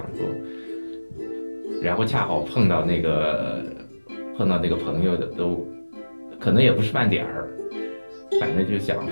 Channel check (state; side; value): inverted; both; correlation -1.00